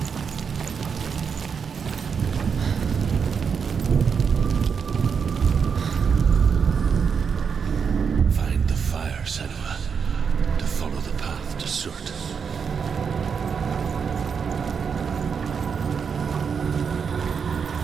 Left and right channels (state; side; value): quieter; left; 6.3 dB